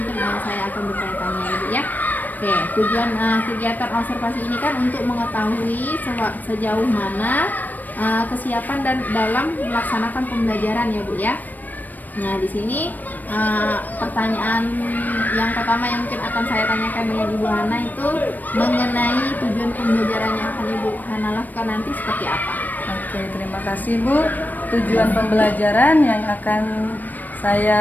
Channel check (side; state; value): right; late; 0.086 ms